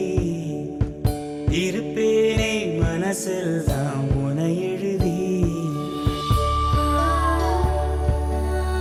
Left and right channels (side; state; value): both; identical; correlation 1.00